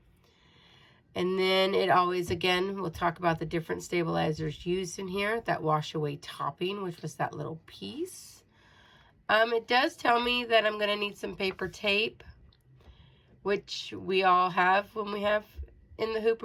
And then it always, again, we'll talk about the different stabilizers used in here. That wash away topping, which was that little piece. It does tell me that I'm going to need some paper tape, which we all have when we have in the hoop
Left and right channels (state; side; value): identical; both; correlation 1.00